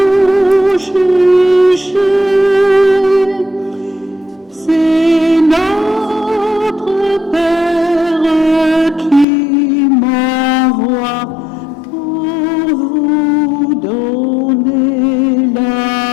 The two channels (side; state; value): right; drops out; at 9.2 s